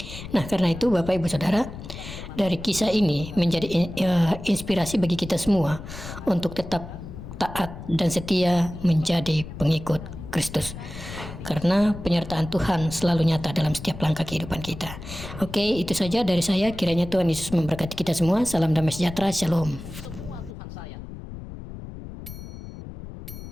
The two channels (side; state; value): left; noise; rumble, 11 dB below the sound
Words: Nah, karena itu Bapak, Ibu, Saudara, dari kisah ini menjadi inspirasi bagi kita semua untuk tetap taat dan setia menjadi pengikut Kristus, karena penyertaan Tuhan selalu nyata dalam setiap langkah kehidupan kita. Oke, itu saja dari saya. Kiranya Tuhan Yesus memberkati kita semua. Salam damai sejahtera. Shalom.